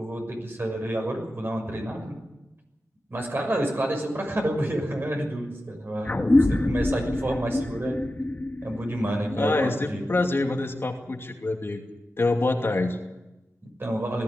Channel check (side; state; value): both; normal; correlation 0.92